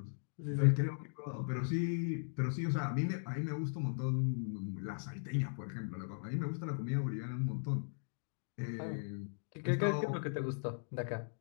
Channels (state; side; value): silent; right; digital silence